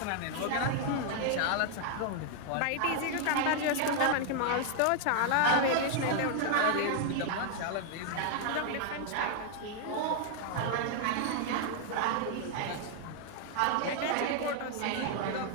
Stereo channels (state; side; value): different; both; correlation 0.00